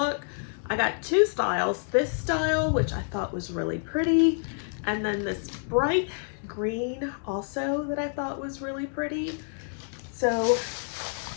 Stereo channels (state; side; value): silent; right; digital silence